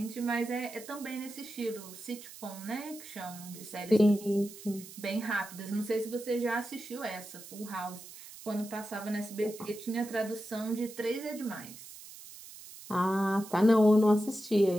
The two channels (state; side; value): noise; right; hiss, 16 dB below the sound